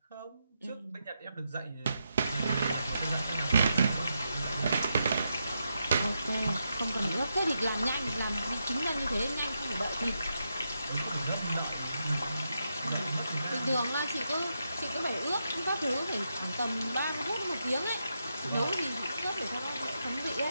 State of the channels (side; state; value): both; inverted; correlation -0.84